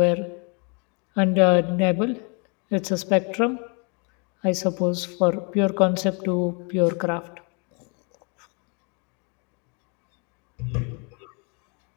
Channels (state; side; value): quieter; right; 34.6 dB